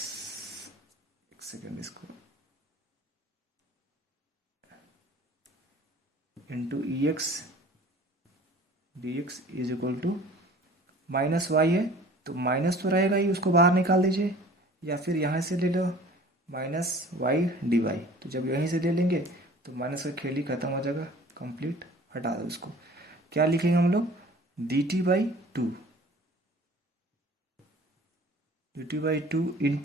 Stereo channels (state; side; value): normal; both; correlation 0.47